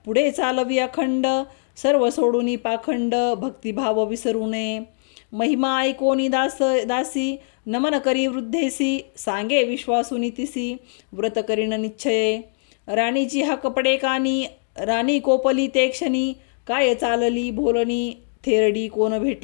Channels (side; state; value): right; silent; digital silence